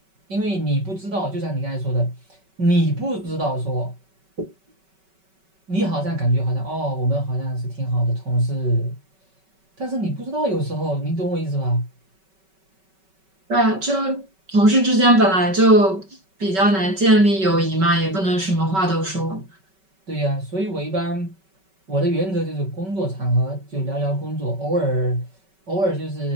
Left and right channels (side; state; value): left; late; 5.2 ms